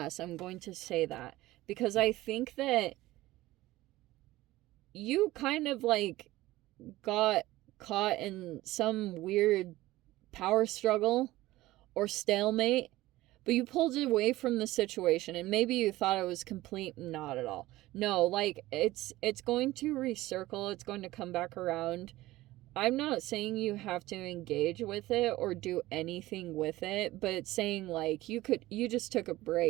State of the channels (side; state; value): left; quieter; 17.4 dB